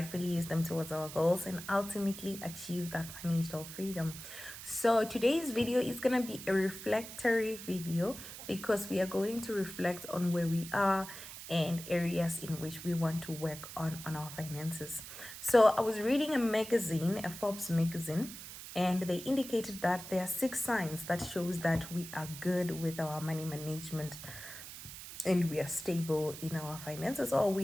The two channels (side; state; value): right; noise; hiss, 12 dB below the sound